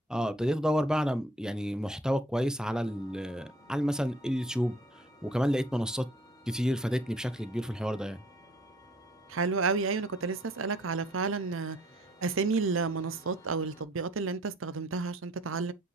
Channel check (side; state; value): both; normal; correlation 0.58